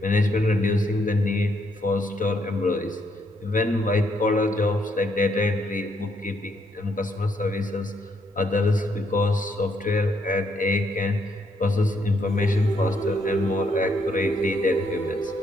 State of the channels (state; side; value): normal; both; correlation 0.73